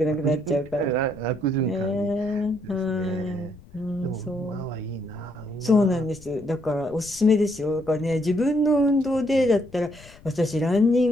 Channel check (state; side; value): noise; left; rumble, 22 dB below the sound